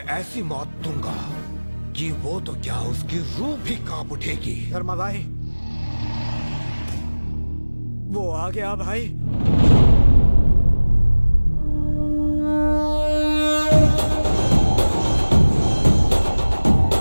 ऐसी मौत दूंगा कि वो तो क्या उसकी रूह भी कांप उठेगी। धर्मा भाई, वो आ गया भाई।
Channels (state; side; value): inverted; both; correlation -1.00